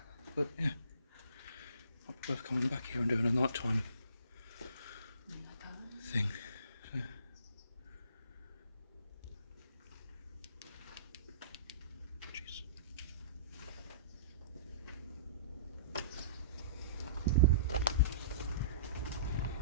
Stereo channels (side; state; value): both; inverted; correlation -0.47